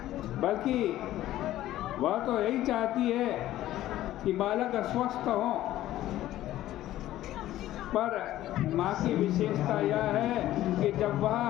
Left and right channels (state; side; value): quieter; right; 14.2 dB